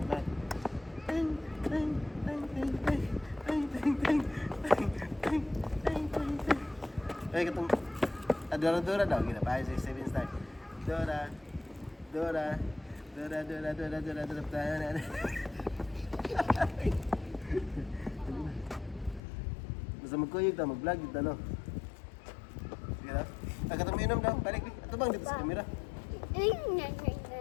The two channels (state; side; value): drops out; right; at 19.2 s